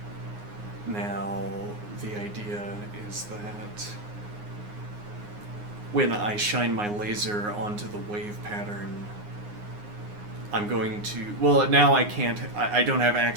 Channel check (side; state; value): left; late; 9.6 ms